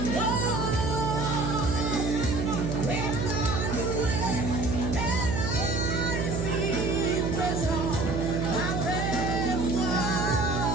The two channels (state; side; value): noise; right; hum, 1 dB below the sound